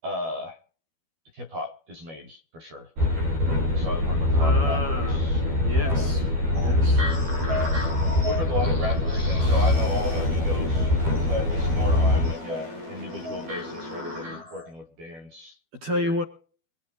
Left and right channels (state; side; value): late; left; 12 ms